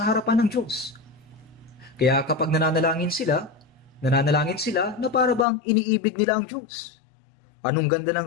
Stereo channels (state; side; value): drops out; right; at 5.5 s